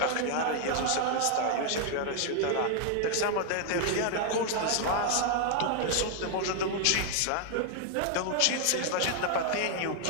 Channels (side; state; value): both; different; correlation 0.00